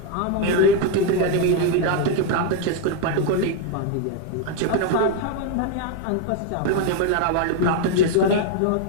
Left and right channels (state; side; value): different; both; correlation 0.01